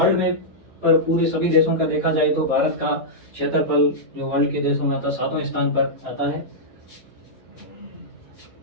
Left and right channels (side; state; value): right; noise; hum, 29 dB below the sound